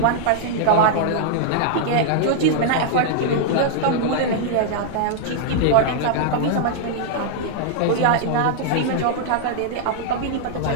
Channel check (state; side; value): different; both; correlation -0.01